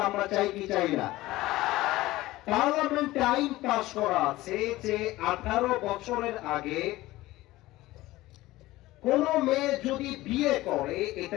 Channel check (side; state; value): right; quieter; 17.7 dB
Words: আমরা চাই কি চাই না? পার্লামেন্টে আইন পাস করা আছে যে 18 বছরের আগে কোন মেয়ে যদি বিয়ে করে